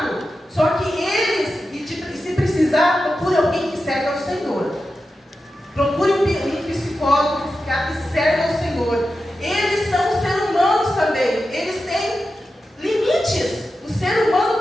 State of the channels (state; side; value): normal; both; correlation 0.91